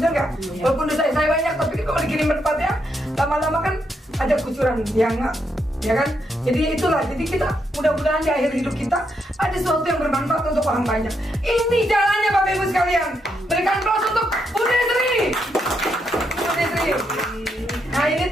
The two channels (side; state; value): both; normal; correlation 0.79